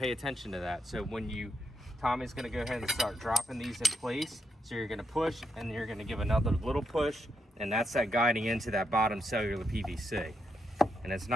attention to that. So when Tommy's going to go ahead and start dropping these in place, so you're going to push, and then you're going to give another little push, and that's that guiding into that bottom cellular PVC. And it's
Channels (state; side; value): normal; both; correlation 0.80